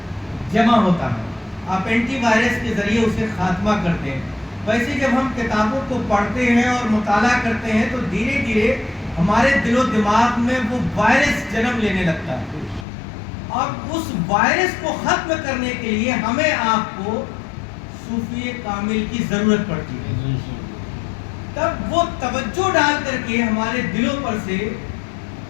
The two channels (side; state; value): right; drops out; at 12.9 s